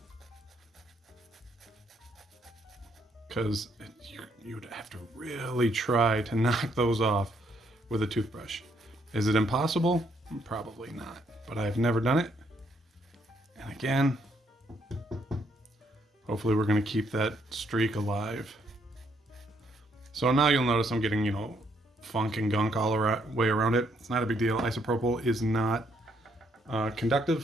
Because you'd have to really try to knock those off with a toothbrush. Is it impossible? Probably not, but I've never done it. And again, hopefully we're going to keep that streak alive. So now you'll notice I'm getting, funk and gunk all the way around it. It's not a big deal. Isopropyl is not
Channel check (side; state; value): both; normal; correlation 0.72